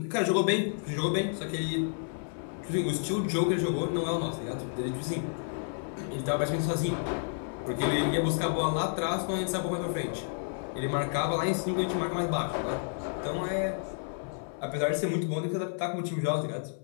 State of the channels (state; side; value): silent; right; 57 dB below the other